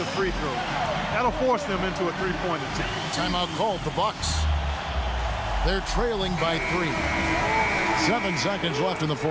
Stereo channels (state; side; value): identical; both; correlation 1.00